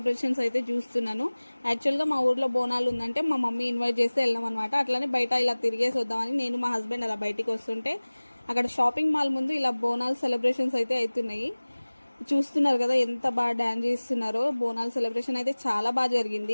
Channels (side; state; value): both; inverted; correlation -1.00